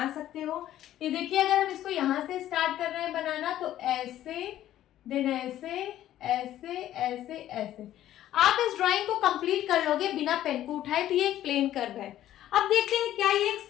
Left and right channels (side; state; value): right; quieter; 12.7 dB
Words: सकते हो। ये देखिए अगर हम इसको यहाँ से स्टार्ट कर रहे हैं बनाना, तो ऐसे, देन ऐसे, ऐसे, ऐसे, ऐसे आप इस ड्राइंग को कंप्लीट कर लोगे बिना पेन को उठाए। तो ये एक प्लेन कर्व है। अब देखते हैं क्या ये एक